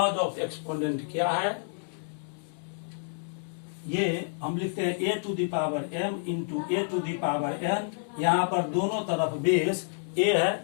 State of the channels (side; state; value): right; silent; digital silence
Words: ऑफ एक्सपोनेंट क्या है, ये हम लिखते हैं a to the power m into a to the power n। यहाँ पर दोनों तरफ बेस a